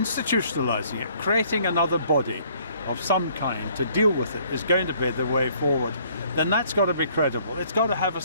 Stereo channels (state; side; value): inverted; both; correlation -0.61